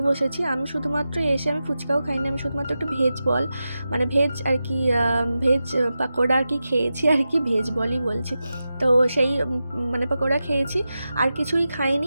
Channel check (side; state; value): both; inverted; correlation -0.92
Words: বসেছি। আমি শুধুমাত্র এসে আমি ফুচকাও খাইনি, আমি শুধুমাত্র একটু ভেজ বল, মানে ভেজ আর কি, ভেজ পাকোড়া আর কি খেয়েছি আর কি, ভেজ বলই বলছি। তো সেই মানে পাকোড়া খেয়েছি, আর কিছুই